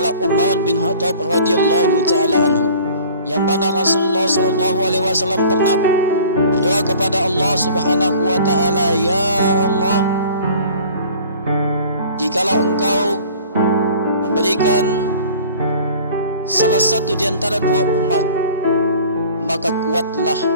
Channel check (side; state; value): both; inverted; correlation -0.47